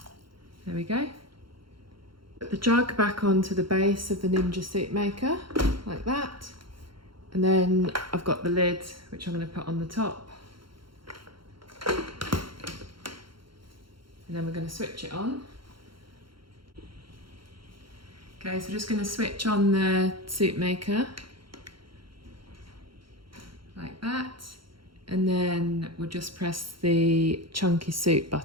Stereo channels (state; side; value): late; left; 0.73 ms